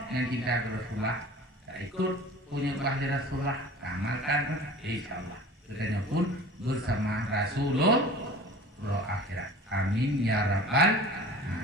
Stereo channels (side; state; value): both; normal; correlation 0.41